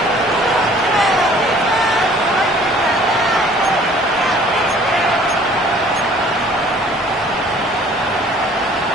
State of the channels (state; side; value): normal; both; correlation 0.54